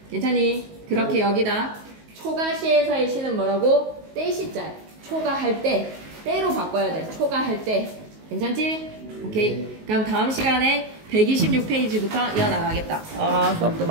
괜찮니? 그렇게 여기다. 초가시에서의 시는 뭐라고? 때시자. 초가할 때. 때로 바꿔야 돼. 초가할 때. 괜찮지? 오케이. 그럼 다음 시간에 126페이지부터 이어나가겠다. 수업도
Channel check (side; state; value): left; late; 19 ms